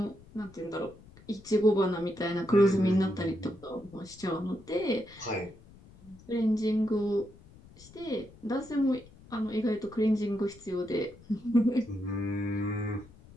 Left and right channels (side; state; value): left; noise; rumble, 22 dB below the sound